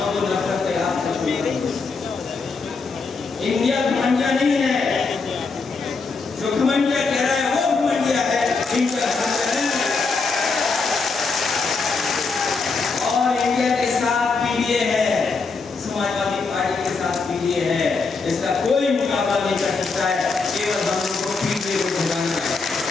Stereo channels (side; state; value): right; quieter; 4.4 dB